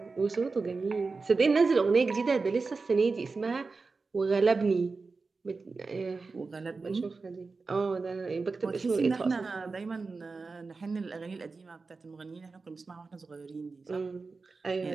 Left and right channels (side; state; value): left; quieter; 4.2 dB